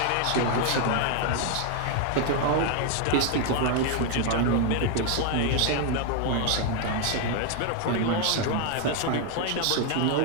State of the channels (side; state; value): both; different; correlation 0.00